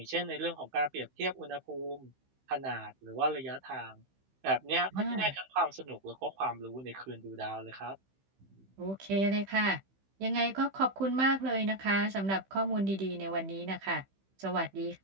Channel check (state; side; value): late; left; 15 ms